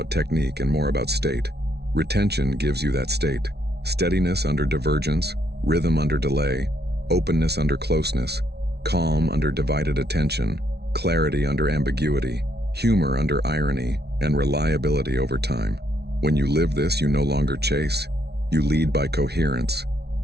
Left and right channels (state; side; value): late; left; 0.48 ms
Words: technique and more about state. Retention gives you that state. Steadiness under divergence, rhythm under delay, openness under closeness, calm under divided attention, clarity under ambiguity, humor under irony, and reliability over time. When you live this, you no longer chase. You lead by coherence.